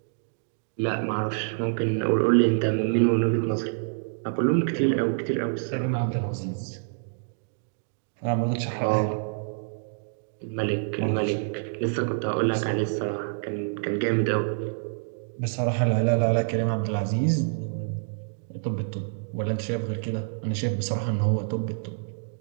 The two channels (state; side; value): silent; left; digital silence